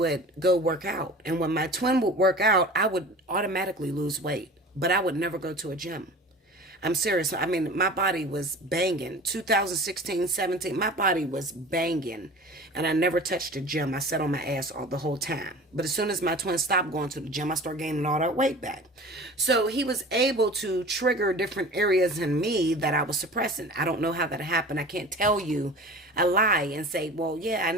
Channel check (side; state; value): both; normal; correlation 0.39